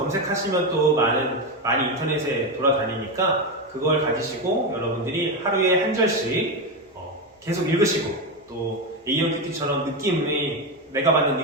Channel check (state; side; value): normal; both; correlation 0.13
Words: 또 많이 인터넷에 돌아다니니까 그걸 가지시고 여러분들이 하루에 한 절씩 계속 읽으시고 또 A형 큐티처럼 내가